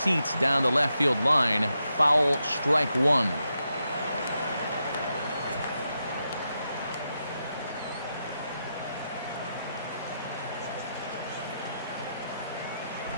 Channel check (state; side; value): inverted; both; correlation -0.85